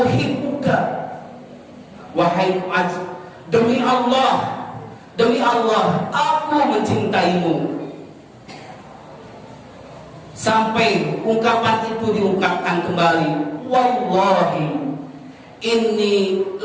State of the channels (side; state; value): both; identical; correlation 1.00